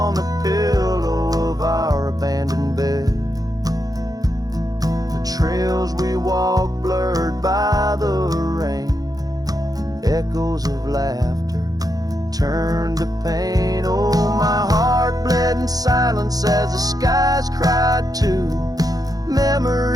the pillow of our abandoned bed. The trails we walk blurred by the rain, echoes of laughter turned to pain. Oh, my heart bled in silence as the skies cried too.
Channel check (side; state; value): left; late; 0.18 ms